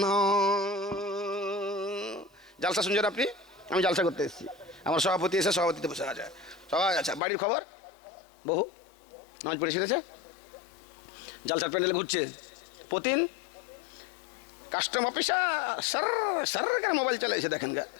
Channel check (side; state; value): right; drops out; at 7.2 s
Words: জালসা শুনছেন আপনি? আমি জালসা করতে এসেছি, আমার সভাপতি এসে সভাপতিতে বসে আছে সবাই। আচ্ছা, বাড়ির খবর? বহু নামাজ পড়ে শিখেছে, জালসার প্যান্ডেলে ঘুরছে, প্রতিদিন কাস্টম অফিসার সার সার মোবাইল চালাইছে, দেখেন গা।